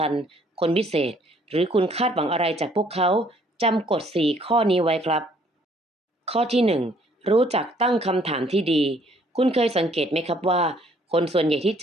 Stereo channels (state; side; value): normal; both; correlation 0.62